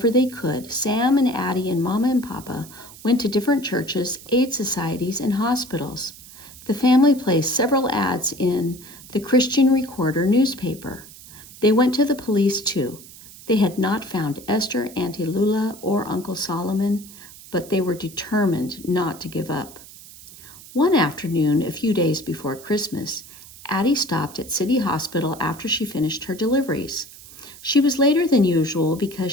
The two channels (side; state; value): right; noise; hiss, 18 dB below the sound